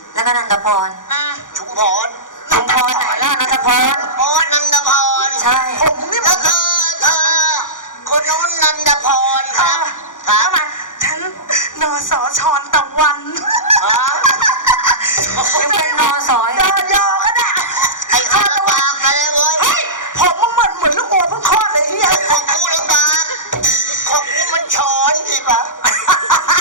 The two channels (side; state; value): right; late; 0.88 ms